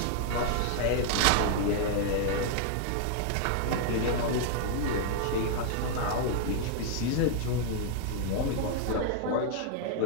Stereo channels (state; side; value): different; both; correlation 0.00